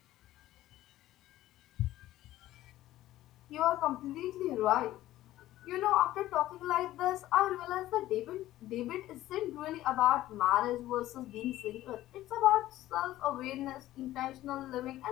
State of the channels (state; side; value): quieter; right; 14.9 dB